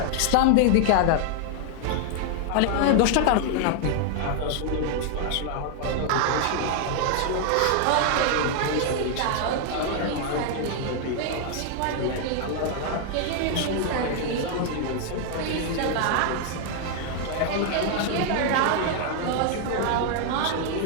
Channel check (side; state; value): both; different; correlation 0.00